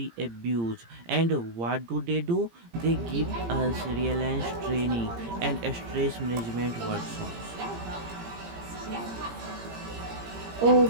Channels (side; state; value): left; late; 17 ms